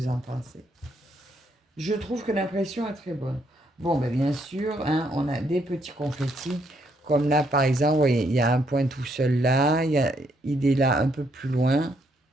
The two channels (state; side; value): normal; both; correlation 0.73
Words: en pensez. Je trouve que l'impression est très bonne. Bon, ben bien sûr, hein, on a des petits confettis. Comme là, par exemple, vous voyez, il y a un point tout seul là. Il est là un peu plus loin.